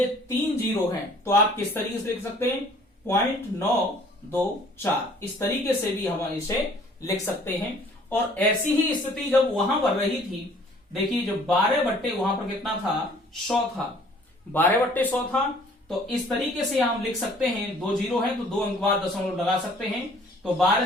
3 0 है, तो आप किस तरीके से लिख सकते हैं 0.924, इस तरीके से भी हम इसे लिख सकते हैं। और ऐसी ही स्थिति जब वहां पर रही थी, देखिए जो 12 वहां पर कितना था 100 था, 12/100 था, तो इस तरीके से हम लिख सकते हैं 2 0 है तो 2 अंक बाद दशमलव लगा सकते हैं। तो 12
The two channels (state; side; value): normal; both; correlation 0.55